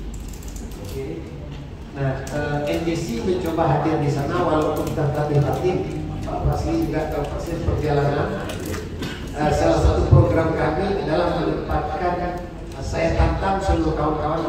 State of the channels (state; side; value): identical; both; correlation 1.00